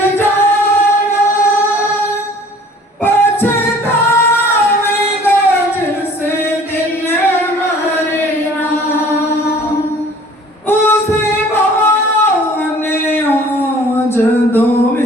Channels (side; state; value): both; normal; correlation 0.51